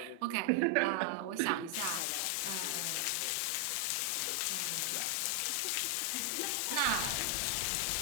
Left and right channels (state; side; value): different; both; correlation 0.00